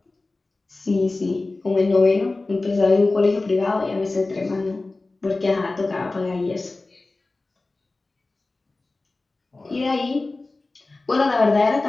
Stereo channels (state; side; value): quieter; right; 3.3 dB